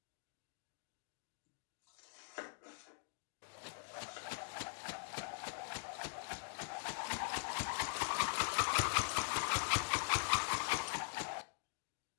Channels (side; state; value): right; silent; digital silence